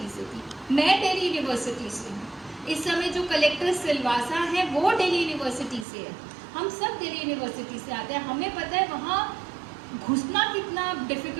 से थी, मैं दिल्ली यूनिवर्सिटी से हूँ। इस समय जो कलेक्टर सिलवासा है वो दिल्ली यूनिवर्सिटी से है। हम सब दिल्ली यूनिवर्सिटी से आते हैं, हमें पता है वहाँ घुसना कितना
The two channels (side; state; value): left; drops out; at 5.9 s